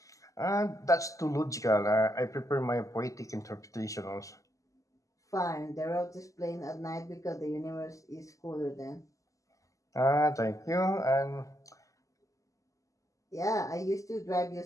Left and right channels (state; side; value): late; right; 0.16 ms